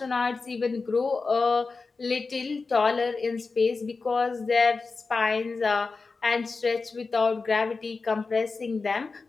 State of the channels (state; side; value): quieter; right; 4.2 dB